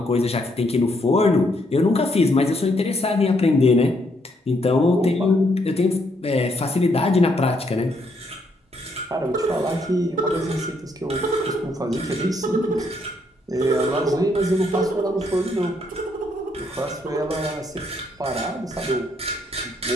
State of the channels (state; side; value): normal; both; correlation 0.73